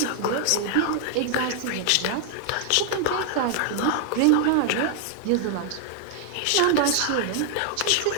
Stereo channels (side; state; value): both; different; correlation 0.00